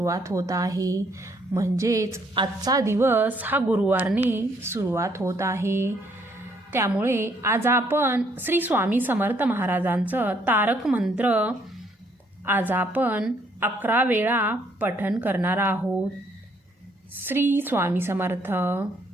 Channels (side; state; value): both; normal; correlation 0.68